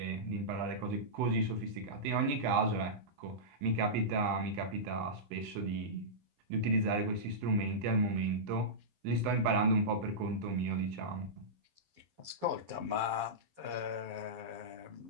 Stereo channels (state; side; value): late; left; 11 ms